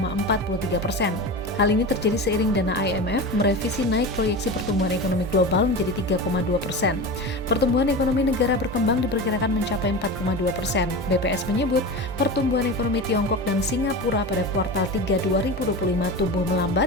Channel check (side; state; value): both; normal; correlation 0.27